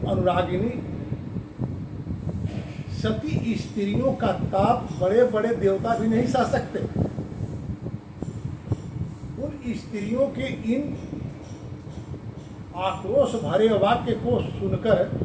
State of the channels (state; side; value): identical; both; correlation 1.00